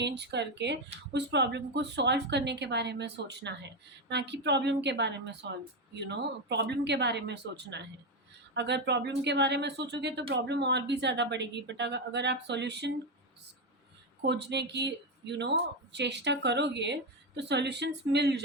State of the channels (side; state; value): both; normal; correlation 0.10